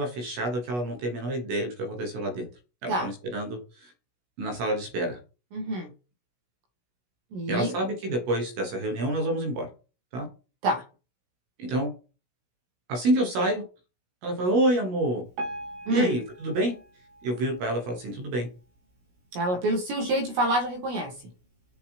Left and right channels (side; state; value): left; late; 16 ms